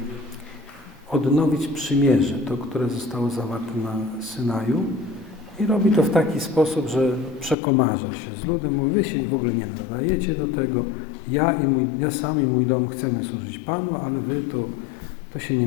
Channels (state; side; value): drops out; right; at 7.6 s